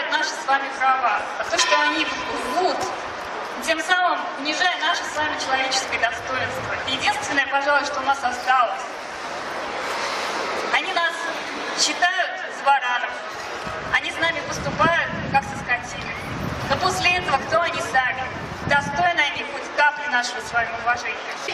наши с вами права, а то, что они рвут, тем самым унижая наше с вами человеческое достоинство. Единственное, пожалуй, что у нас осталось. Они нас считают за баранов, они с нами поступают, как со скотиной. Но после этого кто они сами? Достойны они хоть капли нашего с вами уважения.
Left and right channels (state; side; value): identical; both; correlation 1.00